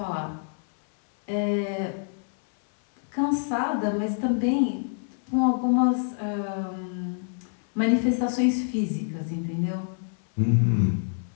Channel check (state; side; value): silent; right; 61 dB below the other